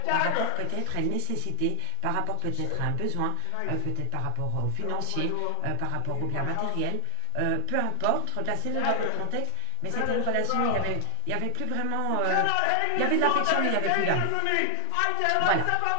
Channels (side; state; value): both; different; correlation 0.00